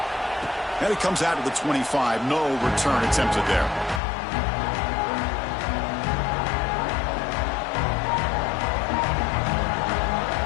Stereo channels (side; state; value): right; drops out; at 4.0 s